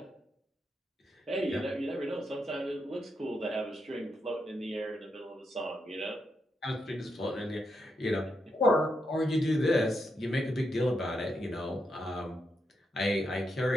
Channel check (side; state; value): both; normal; correlation 0.83